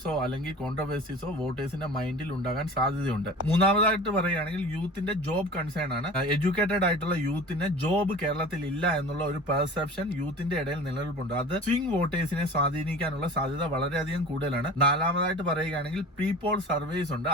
അല്ലെങ്കിൽ കോൺട്രവേഴ്സീസോ വോട്ടേഴ്സിന്റെ മൈൻഡിൽ ഉണ്ടാകാൻ സാധ്യതയുണ്ട്. മൂന്നാമതായിട്ട് പറയുകയാണെങ്കിൽ യൂത്തിന്റെ ജോബ് കൺസേൺ ആണ്. എഡ്യൂക്കേറ്റഡ് ആയിട്ടുള്ള യൂത്തിന് ജോബ് കേരളത്തിൽ ഇല്ല എന്നുള്ള ഒരു പെർസെപ്ഷൻ യൂത്തിന്റെ ഇടയിൽ നിലനിൽപ്പുണ്ട്. അത് സ്വിംഗ് വോട്ടേഴ്സിനെ സ്വാധീനിക്കാനുള്ള സാധ്യത വളരെയധികം കൂടുതലാണ്. നാലാമതായിട്ട് പറയുകയാണെങ്കിൽ പ്രീപോൾ സർവേസ് ഉണ്ട്.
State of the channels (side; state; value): both; normal; correlation 0.38